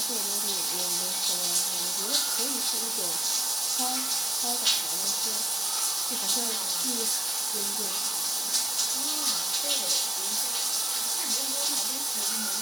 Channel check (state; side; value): normal; both; correlation 0.89